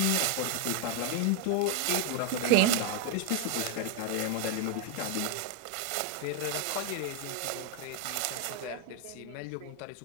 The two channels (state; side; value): different; both; correlation 0.00